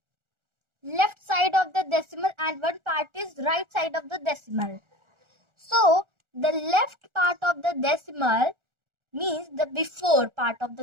left side of the decimal and one part is right side of the decimal. So the left part of the decimal means the before part of the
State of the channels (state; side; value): late; left; 1.4 ms